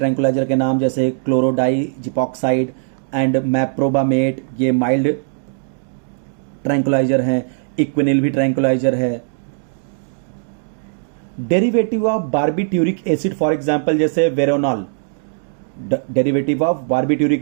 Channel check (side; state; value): left; silent; digital silence